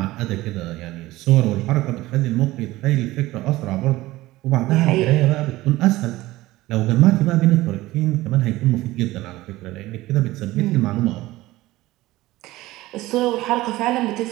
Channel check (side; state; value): left; quieter; 17.9 dB